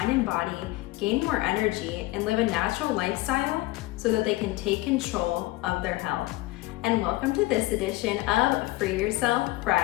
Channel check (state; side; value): quieter; right; 19.7 dB